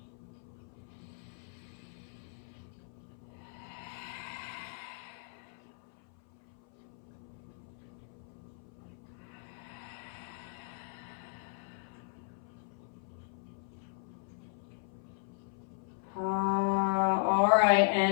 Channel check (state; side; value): silent; right; 53 dB below the other